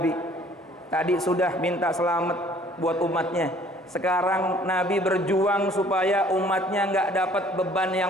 Tadi sudah minta selamat buat umatnya. Sekarang Nabi berjuang supaya umatnya nggak dapat beban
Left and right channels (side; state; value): both; normal; correlation 0.56